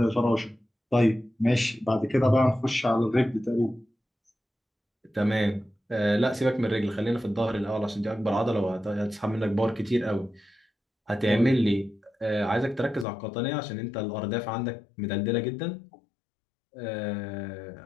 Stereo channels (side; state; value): right; drops out; at 13.1 s